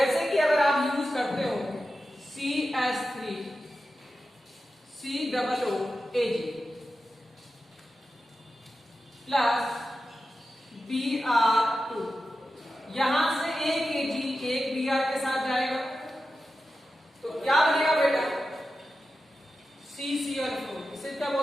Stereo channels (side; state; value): both; normal; correlation 0.92